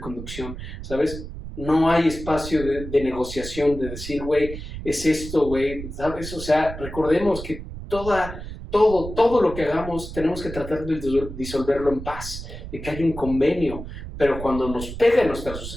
¿sabes? No hay espacio de negociación, de decir, güey, es esto, güey, ¿sabes? O sea, recordemos que todo lo que hagamos tenemos que tratar de disolverlo en paz, de que haya un convenio. Pero cuando nos pega nuestra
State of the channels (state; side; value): noise; right; rumble, 10 dB below the sound